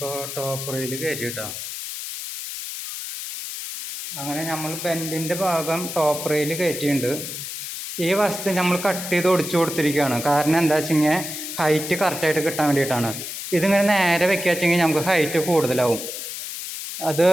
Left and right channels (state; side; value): noise; left; hiss, 7 dB below the sound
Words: ടോപ്പ് റെയിൽ കയറ്റി കേട്ടോ. അങ്ങനെ നമ്മൾ ബെൻഡിൻ്റെ ഭാഗം ടോപ്പ് റെയിൽ കയറ്റിയിട്ടുണ്ട്. ഈ വസ്തു നമ്മൾ കട്ട് ചെയ്ത് ഒടിച്ചു കൊടുത്തിരിക്കുകയാണ്. കാരണം എന്താ വെച്ചെങ്കിൽ ഹൈറ്റ് കറക്റ്റായിട്ട് കിട്ടാൻ വേണ്ടിയിട്ടാണ്. ഇതിങ്ങനെ നേരെ വെക്കുക വെച്ചെങ്കിൽ നമുക്ക് ഹൈറ്റ് കൂടുതലാവും. അത്